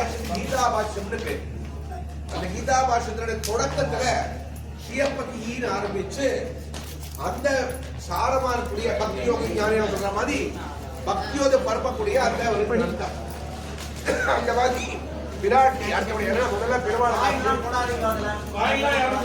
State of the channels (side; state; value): both; identical; correlation 1.00